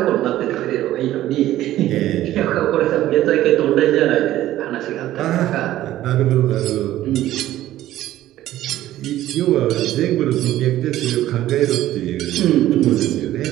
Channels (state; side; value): quieter; left; 14.0 dB